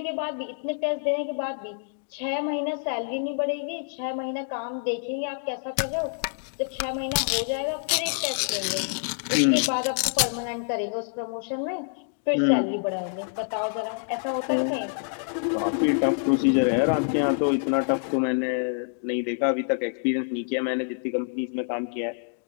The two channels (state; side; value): silent; right; 60 dB below the other